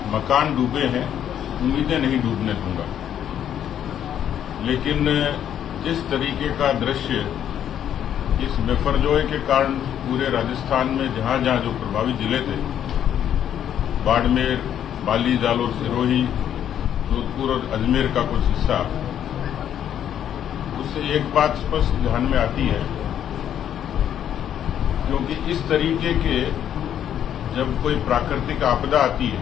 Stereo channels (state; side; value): quieter; right; 9.9 dB